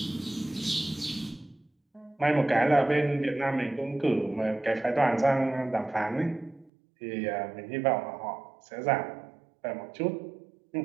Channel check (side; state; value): left; drops out; at 6.7 s